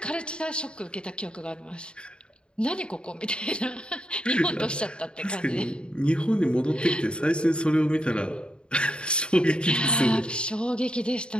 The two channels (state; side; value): late; right; 0.052 ms